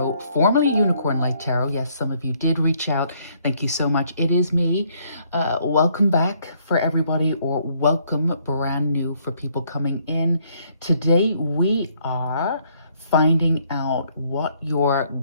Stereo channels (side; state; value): both; inverted; correlation -0.68